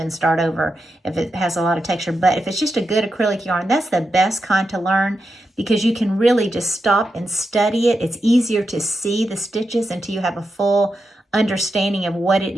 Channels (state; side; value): normal; both; correlation 0.87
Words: start over if it has a lot of texture. But if it's just a good acrylic yarn, that's the best kind to learn, because you can really just stop and study it. It's easier to see the stitches until you have a full understanding of what it